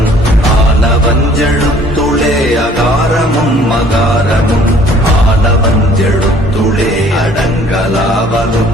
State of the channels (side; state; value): both; normal; correlation 0.56